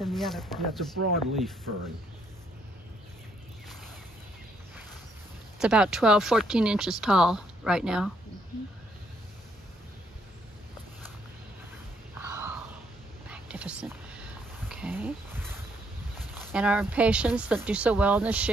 the other ferns. Yeah, it's a broadleaf fern. It's about 12, 14 inches tall right now. Oh, magnificent. Okay. And our impatiens that do so well in the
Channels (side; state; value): both; normal; correlation 0.71